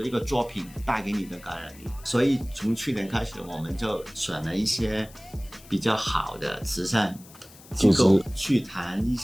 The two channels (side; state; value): left; noise; hiss, 22 dB below the sound